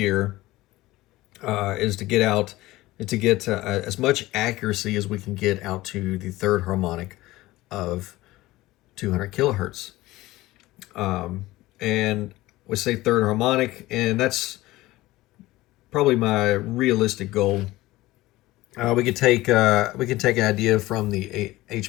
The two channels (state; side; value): quieter; right; 18.1 dB